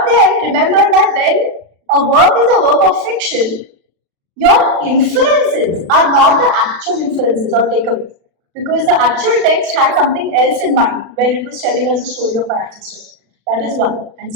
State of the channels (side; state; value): left; late; 36 ms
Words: then remember that when a work is a work of fiction, your inferences are not the actual inferences or takeaways, because the actual text had something else in mind when it was telling us the story of our ancestors. That is one. And